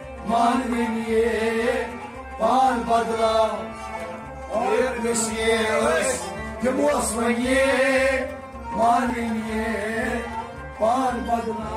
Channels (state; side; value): identical; both; correlation 1.00